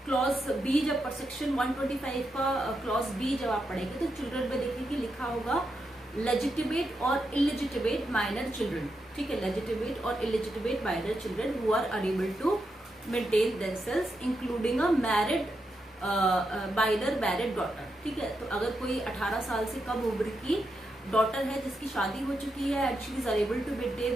क्लॉज बी, जब सेक्शन 125 का क्लॉज बी जब आप पढ़ेंगे तो चिल्ड्रन में देखेंगे लिखा होगा लेजिटिमेट और इलिजिटिमेट माइनर चिल्ड्रन। ठीक है, लेजिटिमेट और illegitimate minor children who are unable to maintain themselves including a married minor married daughter. ठीक है, तो अगर कोई 18 साल से कम उम्र की डॉटर है जिसकी शादी हो चुकी है and she is unable to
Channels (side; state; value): both; normal; correlation 0.85